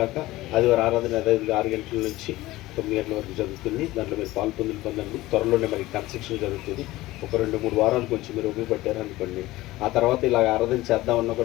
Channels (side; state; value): right; quieter; 17.9 dB